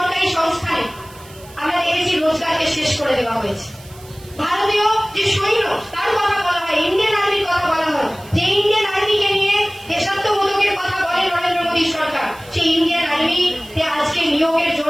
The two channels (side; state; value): right; noise; hiss, 22 dB below the sound